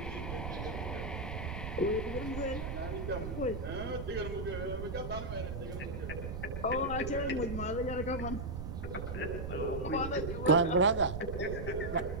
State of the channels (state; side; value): noise; right; rumble, 5 dB below the sound